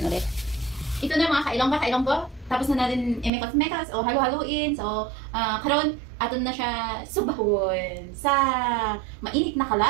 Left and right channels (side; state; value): left; drops out; at 3.3 s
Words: ulit. Ito na mga kailonggo. Tapos na natin i-mekas-mekas o halo-haloin. So, karon aton na siya subahon sa mainit na